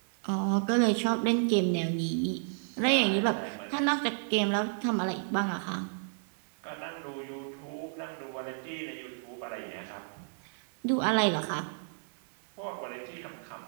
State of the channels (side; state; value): left; silent; digital silence